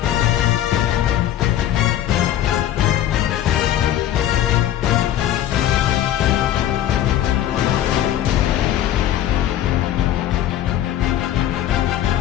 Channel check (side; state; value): right; quieter; 11.9 dB